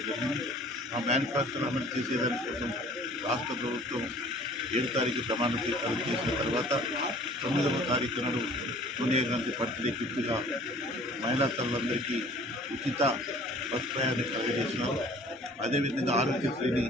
జరిగింది. ఆ మేనిఫెస్టోను అమలు చేసేదాని కోసం రాష్ట్ర ప్రభుత్వం 7వ తారీఖు ప్రమాణ స్వీకారం చేసిన తర్వాత 9వ తారీఖు నాడు సోనియా గాంధీ బర్త్డే గిఫ్ట్గా మహిళా తల్లులందరికీ ఉచిత బస్ ప్రయాణం కలుగజేసినారు. అదేవిధంగా ఆరోగ్యశ్రీని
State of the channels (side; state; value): both; normal; correlation 0.51